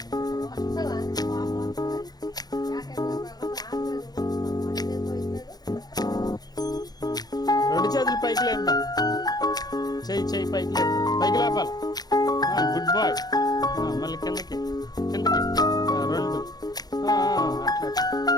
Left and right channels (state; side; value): late; right; 0.19 ms